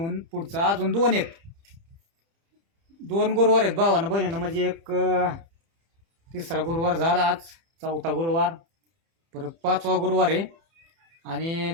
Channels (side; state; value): left; late; 30 ms